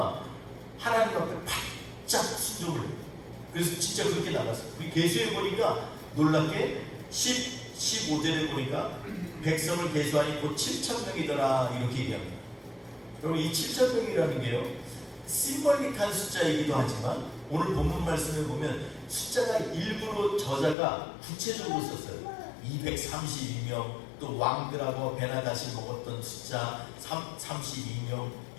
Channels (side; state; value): right; drops out; at 20.8 s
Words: 하나님 앞에 바짝 순종을 해요. 그래서 진짜 그렇게 나갔어요. 우리 계수에 보니까 놀랍게 15절에 보니까 백성을 계수하니 곧 7,000명이더라 이렇게 얘기합니다. 여러분 이 7,000명이라는 게요 심벌릭한 숫자이기도 하지만 오늘 본문 말씀을 보면 숫자가 일부러 저자가 구체적으로 썼어요. 232명, 또 왕들하고 베나다시 먹었던 숫자 32명